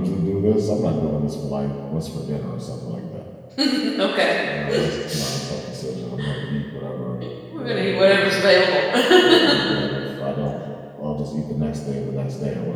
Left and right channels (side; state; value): both; identical; correlation 1.00